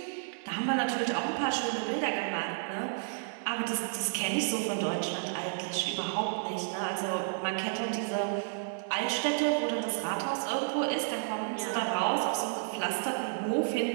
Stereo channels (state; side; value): silent; left; digital silence